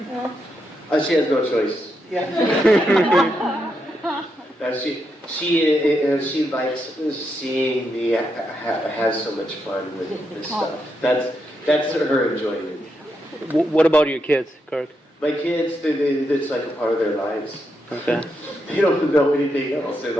She has no choice. Yeah. She likes seeing me have so much fun with this stuff. That's her enjoyment. What about your kids, Kirk? My kids, it's like a part of their lives. Okay. They don't know anything else. They're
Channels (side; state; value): both; normal; correlation 0.82